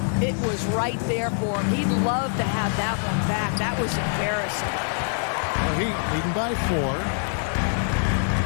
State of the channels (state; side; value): silent; right; digital silence